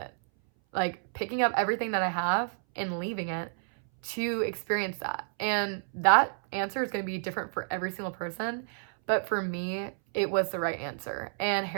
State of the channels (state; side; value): silent; left; 58 dB below the other